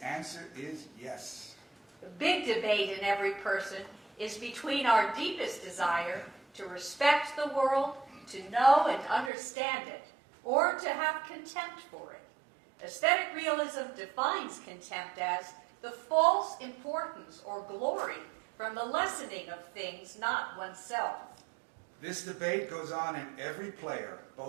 answer is yes. The big debate in every person is between our deepest desire to respect the world, to know and understand it, or to have contempt for it. Aesthetic realism defines contempt as the false importance or glory from the lessening of things not oneself. This debate goes on in every player,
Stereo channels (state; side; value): drops out; left; at 9.3 s